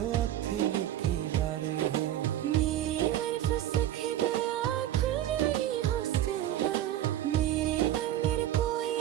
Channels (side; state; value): left; quieter; 12.6 dB